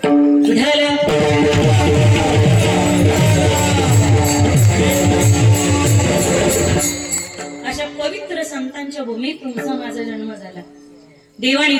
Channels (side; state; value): both; identical; correlation 1.00